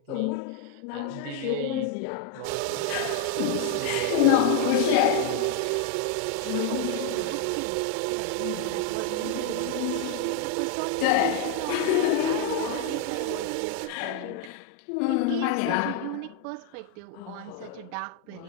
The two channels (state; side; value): different; both; correlation 0.01